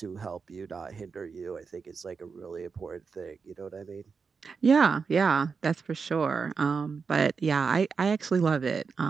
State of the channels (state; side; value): quieter; left; 5.3 dB